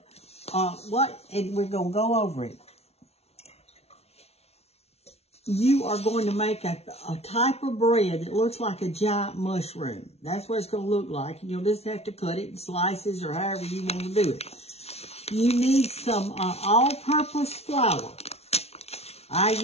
And we're going to go over it. You are going to make a type of bread that looks like a giant mushroom. That's what it's going to look like. And you'll just have to cut it in slices or however you want to do it. You need some all-purpose flour. I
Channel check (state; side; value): late; right; 0.31 ms